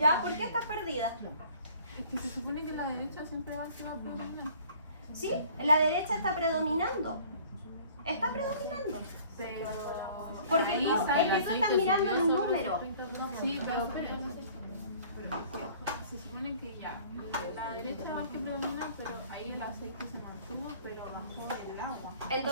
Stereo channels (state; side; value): inverted; both; correlation -0.51